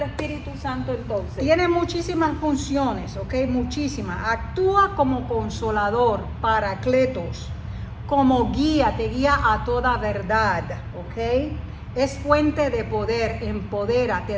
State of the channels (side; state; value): both; identical; correlation 1.00